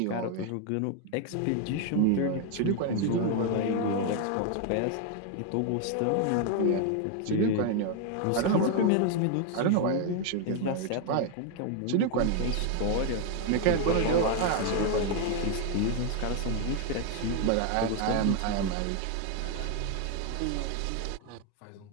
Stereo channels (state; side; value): different; both; correlation 0.01